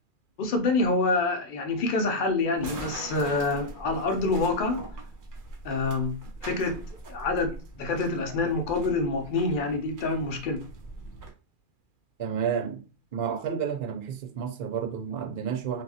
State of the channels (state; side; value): late; right; 2.4 ms